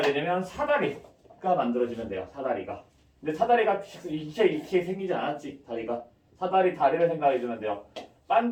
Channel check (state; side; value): identical; both; correlation 1.00